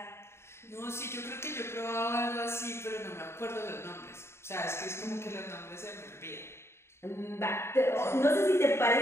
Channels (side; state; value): right; late; 0.12 ms